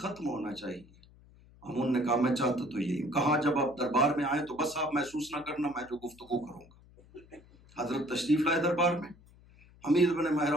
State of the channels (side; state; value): left; noise; hum, 25 dB below the sound